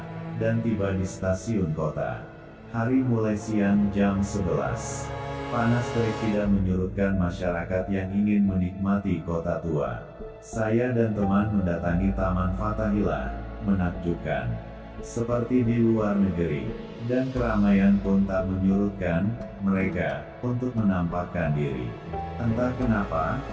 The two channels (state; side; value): identical; both; correlation 1.00